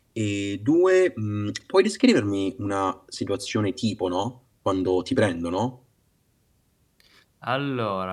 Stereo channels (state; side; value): identical; both; correlation 1.00